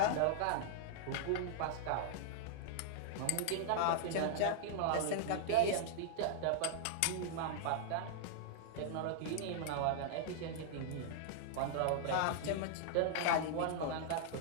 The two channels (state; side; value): different; both; correlation -0.01